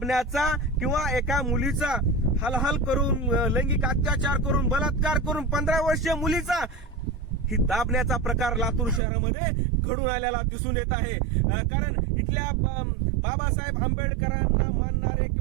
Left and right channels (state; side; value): drops out; left; at 9.0 s